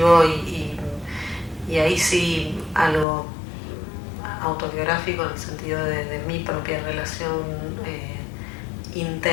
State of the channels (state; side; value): drops out; right; at 3.1 s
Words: y ahí sí algo autobiográfico, en el sentido de mi propia relación